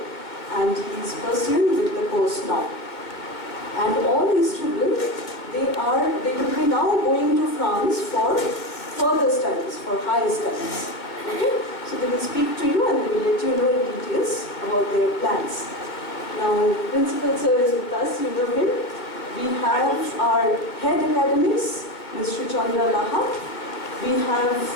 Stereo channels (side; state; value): right; late; 2.1 ms